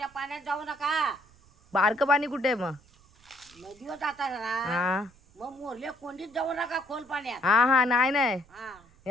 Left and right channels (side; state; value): right; noise; rumble, 28 dB below the sound